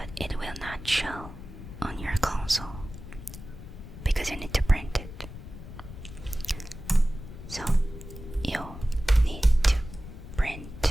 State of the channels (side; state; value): left; noise; rumble, 12 dB below the sound